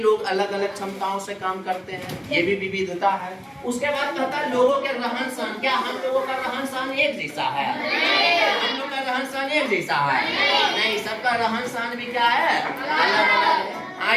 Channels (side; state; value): both; identical; correlation 1.00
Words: अलग अलग क्षमताओं से काम करते हैं, ये भी विविधता है। उसके बाद कहता है लोगों के रहन सहन, क्या हम लोगों का रहन सहन एक जैसा है? हम लोग का रहन सहन एक जैसा है? नहीं, सबका रहन सहन भी क्या है? अलग अलग है। हाँ